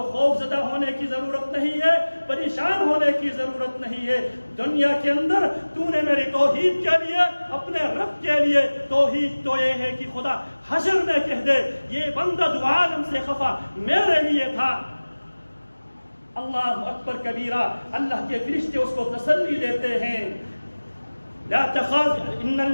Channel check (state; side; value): inverted; both; correlation -1.00